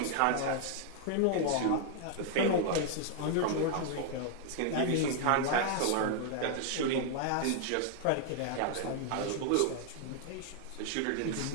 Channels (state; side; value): different; both; correlation 0.00